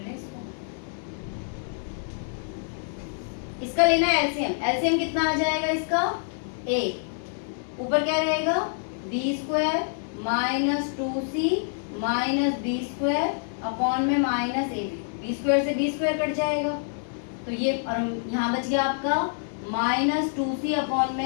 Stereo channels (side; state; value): right; silent; 60 dB below the other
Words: इसको, इसका लेना है एलसीएम। एलसीएम कितना आ जाएगा इसका, a ऊपर क्या रहेगा b square minus 2c minus B square upon में माइनस ए बी स्क्वायर से बी स्क्वायर कट जाएगा, तो ये और यहाँ बच गया आपका माइनस 2c अपॉन